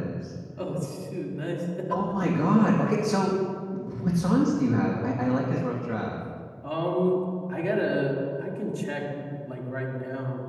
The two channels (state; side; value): identical; both; correlation 1.00